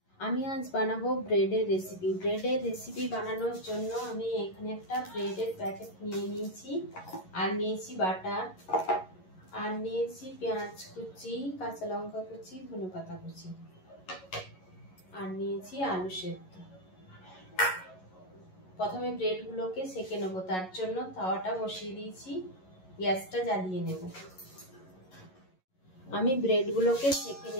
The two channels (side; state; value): right; late; 11 ms